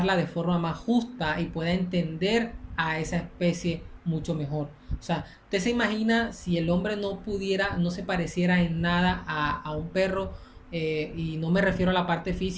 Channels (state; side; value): identical; both; correlation 1.00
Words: de forma más justa y pueda entender a esa especie mucho mejor. O sea, usted se imagina si el hombre no se pareciera en nada a un perro, y no me refiero a la parte